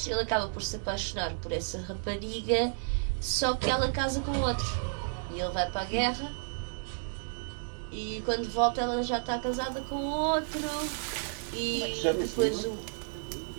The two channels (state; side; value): silent; left; digital silence